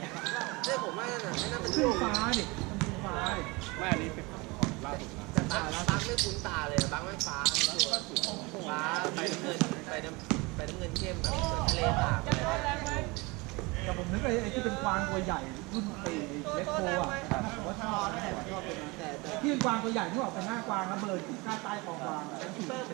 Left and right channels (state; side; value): quieter; left; 25.4 dB